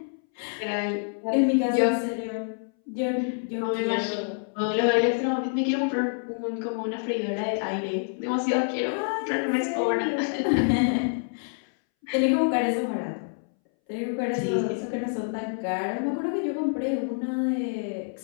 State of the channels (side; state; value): right; silent; 60 dB below the other